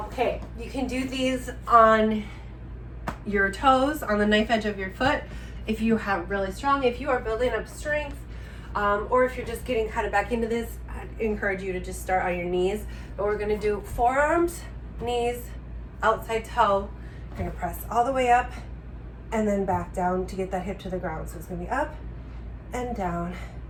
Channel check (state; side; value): identical; both; correlation 1.00